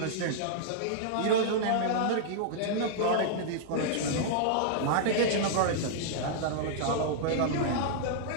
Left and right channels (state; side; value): different; both; correlation -0.01